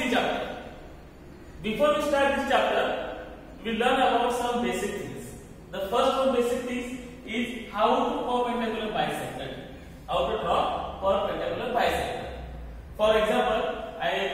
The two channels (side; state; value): both; identical; correlation 1.00